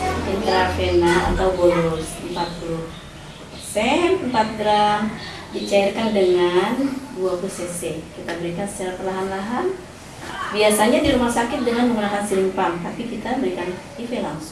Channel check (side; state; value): both; identical; correlation 1.00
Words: intravena atau bolus 40 4 gram dicairkan dengan 20 cc. Kita berikan secara perlahan-lahan. Biasanya di rumah sakit dengan menggunakan siring pump, tapi kita berikan IV